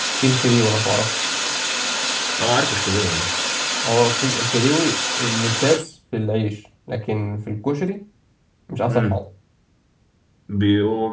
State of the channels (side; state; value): both; identical; correlation 1.00